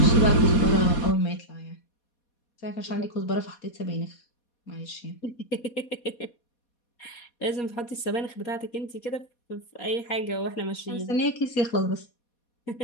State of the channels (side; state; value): right; late; 4.2 ms